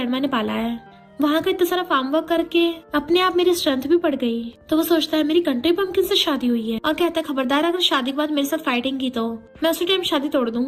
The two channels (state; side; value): identical; both; correlation 1.00